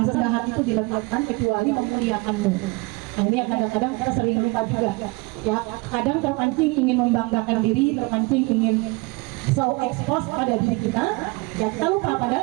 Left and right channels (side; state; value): left; quieter; 26.5 dB